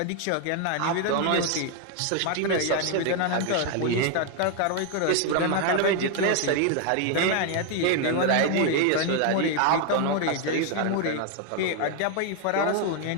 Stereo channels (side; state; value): both; different; correlation 0.01